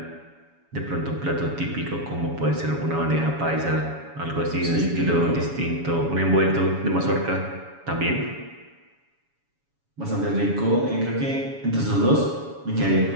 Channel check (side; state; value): left; late; 7.1 ms